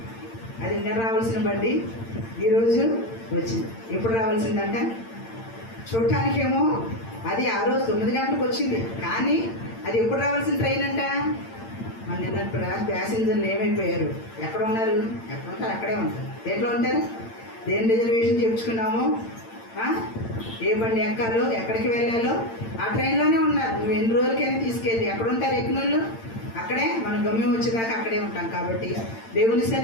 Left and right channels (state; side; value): late; right; 8.8 ms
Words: అది నిన్న రావాల్సిన బండి ఈరోజు వచ్చింది. ఎప్పుడు రావాల్సిందంట చూడటానికేమో అది ఆ రోజు 9 గంటలకు వచ్చింది, కానీ అది ఎప్పుడు రావాల్సిన ట్రైన్ అంట. మన నిన్న ప్యాసింజర్లు ఏమైపోయారు, ఎక్కడ ఉన్నారు? ఎక్కడ ఉంటారు అక్కడే ఉంటారు. దేంట్లో ఉంటారు? దేని రిజర్వేషన్ చేయించుకున్నామో, ఏ బండి ఎక్కాలో, ఎక్కడికి వెళ్ళాలో ఆ ట్రైన్లోనే ఉన్నారు. నువ్వు ఎన్ని రోజులకైనా తీసుకెళ్ళి ఎక్కడ ఉంటారు ఎక్కిన వాళ్ళు అక్కడే. మనం గమ్యం వచ్చేదాకా అక్కడే ఉంటాం. కాబట్టి దేవుని